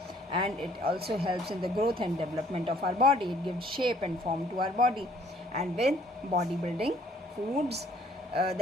and it also helps in the growth and development of our body. It gives shape and form to our body. And with bodybuilding foods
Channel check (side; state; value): both; normal; correlation 0.60